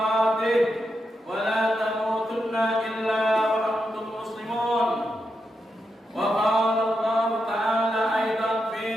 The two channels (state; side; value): normal; both; correlation 0.85